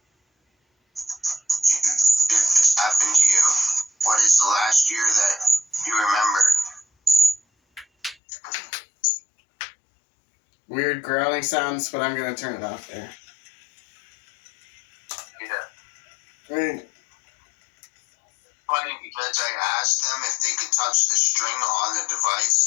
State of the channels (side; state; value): right; drops out; at 8.2 s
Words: did this happen to you? What is the last year that you remember? Weird growling sounds, but I'm going to turn it off there. Yeah. Right. Funny because I asked them if they could touch the string on the